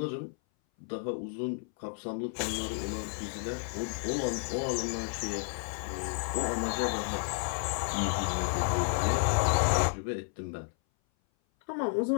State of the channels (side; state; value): right; silent; 57 dB below the other